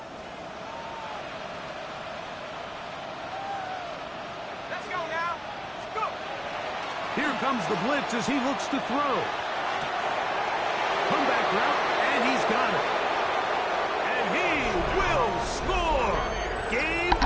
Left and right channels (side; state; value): both; identical; correlation 1.00